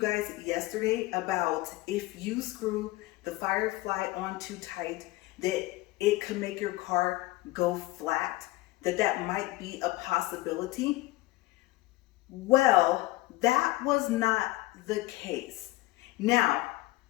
yesterday about if you screw the firefly on too tight that it could make your car go flat, that might be a possibility? Well, that was not the case. Now,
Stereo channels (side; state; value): right; quieter; 19.3 dB